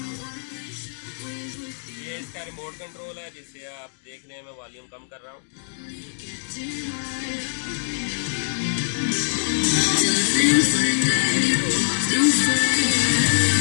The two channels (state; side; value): silent; right; digital silence